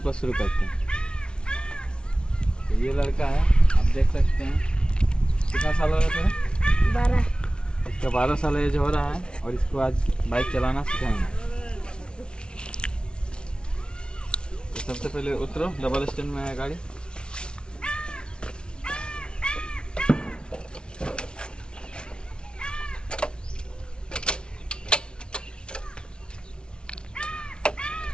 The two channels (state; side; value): late; right; 0.056 ms